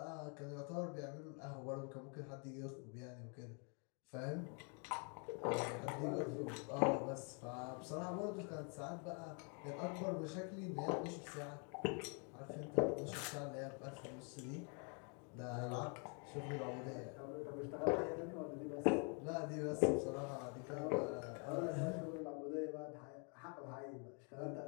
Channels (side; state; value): right; quieter; 38.2 dB